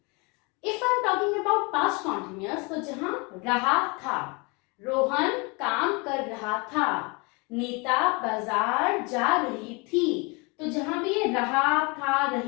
If I am talking about past continuous, तो जहां रहा था, रोहन काम कर रहा था, नीता बाजार जा रही थी। तो जहां भी ये रहा था,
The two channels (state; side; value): quieter; right; 29.2 dB